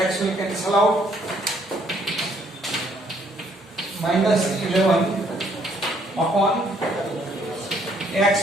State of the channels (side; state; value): both; normal; correlation 0.67